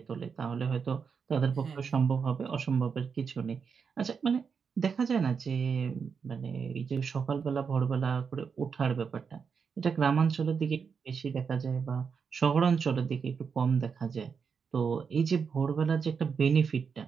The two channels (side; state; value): left; quieter; 6.0 dB